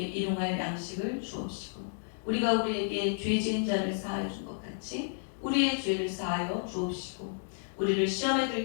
일용할 양식을 주옵시고 우리가 우리에게 죄 지은 자를 사하여 준 것 같이 우리의 죄를 사하여 주옵시고 우리를 시험에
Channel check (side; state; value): right; silent; digital silence